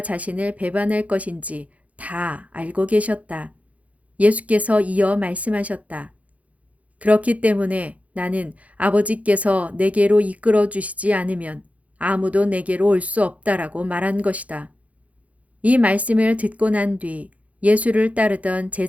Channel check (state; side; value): late; left; 0.068 ms